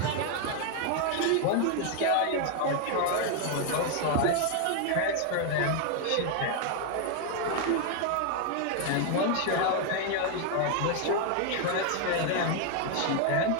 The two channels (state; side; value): different; both; correlation 0.00